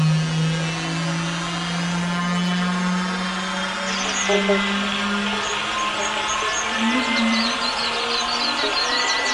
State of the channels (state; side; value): identical; both; correlation 1.00